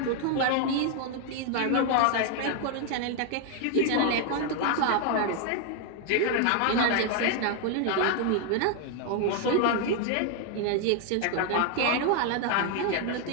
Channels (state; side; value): different; both; correlation 0.00